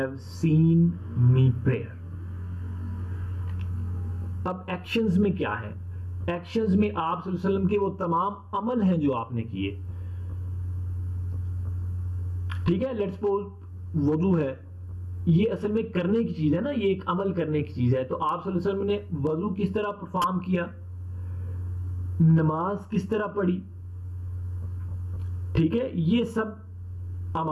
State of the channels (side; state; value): both; identical; correlation 1.00